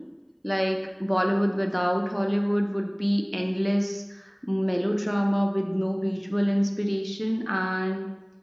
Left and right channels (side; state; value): both; identical; correlation 1.00